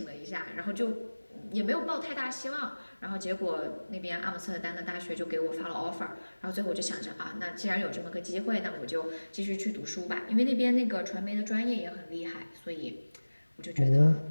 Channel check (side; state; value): both; inverted; correlation -1.00